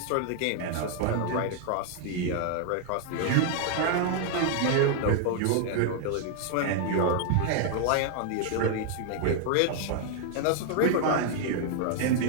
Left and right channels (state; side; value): different; both; correlation 0.00